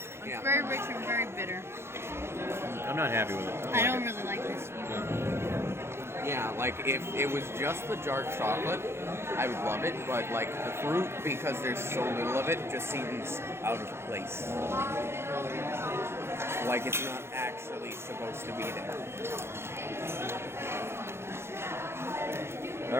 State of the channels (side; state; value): left; late; 0.12 ms